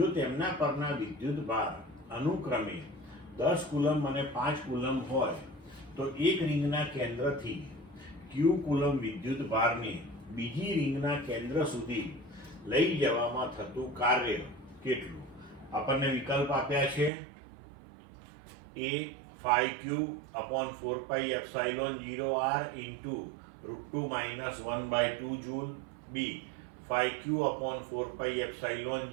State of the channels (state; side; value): drops out; left; at 17.1 s